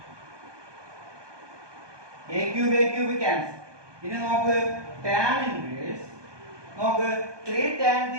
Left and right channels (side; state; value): left; late; 1.2 ms